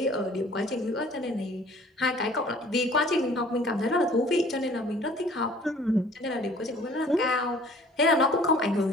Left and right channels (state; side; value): normal; both; correlation 0.52